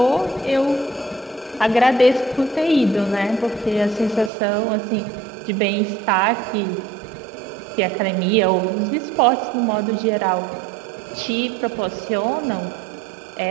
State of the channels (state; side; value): drops out; left; at 4.3 s